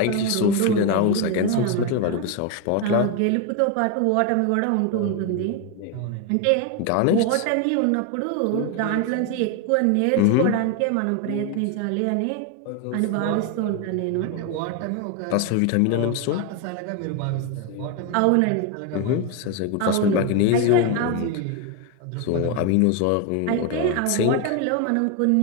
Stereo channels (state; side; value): different; both; correlation 0.02